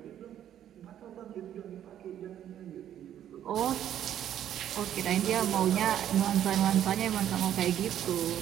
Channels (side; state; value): left; quieter; 10.7 dB